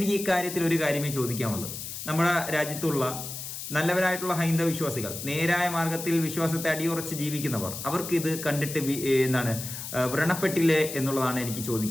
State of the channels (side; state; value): left; noise; hiss, 8 dB below the sound